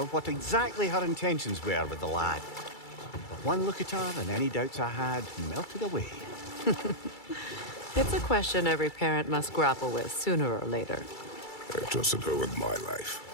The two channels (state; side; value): late; right; 2.3 ms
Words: what exactly her intentions were with the lad. But one look at her and any doubts I had melted away. It's a question every parent must grapple with sooner or later. I trusted her with my life.